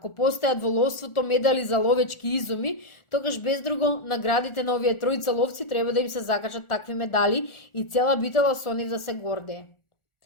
постојат во ловството медали за ловечки изуми, тогаш без друго наградите на овие тројца ловци треба да им се закачат такви медали и цела Битола со нив да се гордее.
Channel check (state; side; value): late; right; 1.4 ms